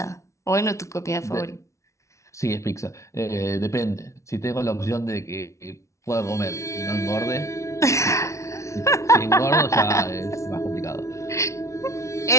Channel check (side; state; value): right; late; 0.14 ms